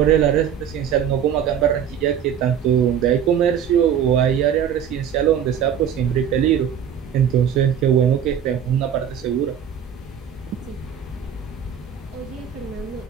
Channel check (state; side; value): quieter; left; 8.6 dB